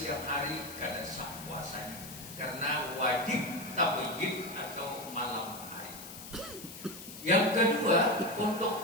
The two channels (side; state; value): left; noise; hiss, 13 dB below the sound